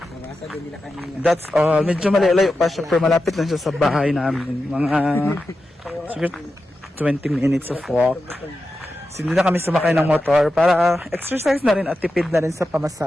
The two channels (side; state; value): both; normal; correlation 0.91